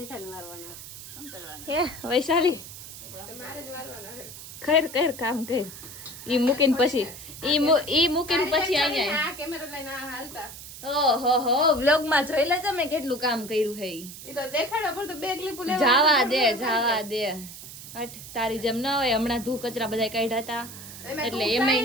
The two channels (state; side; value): noise; right; hiss, 13 dB below the sound